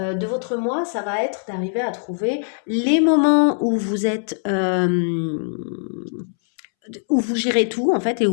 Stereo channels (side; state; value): right; silent; 65 dB below the other